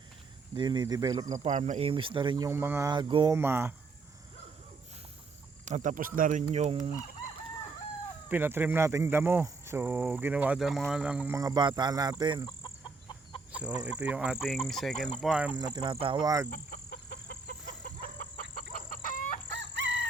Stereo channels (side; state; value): left; quieter; 4.2 dB